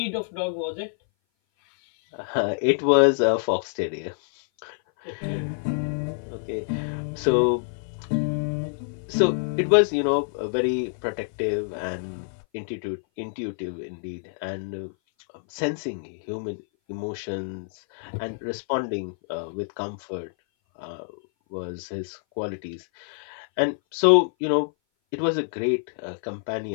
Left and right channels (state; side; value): silent; right; 58 dB below the other